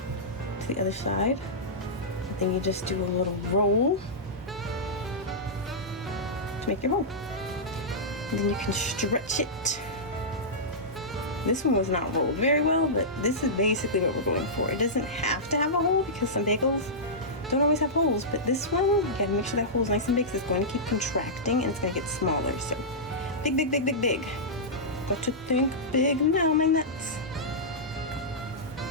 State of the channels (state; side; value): normal; both; correlation -0.13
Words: to the other side. And then you just do a little roll to make your hole. And then you can stretch it. This one was not rolled very well, but this is basically what we're going for. It doesn't have to have a hole because some bagels don't always have holes, but this one, you gotta make sure that hole is nice and big, so it's going to keep contracting and it's gonna get smaller. So big, big, big, big, big. Got to think big now, my nuts.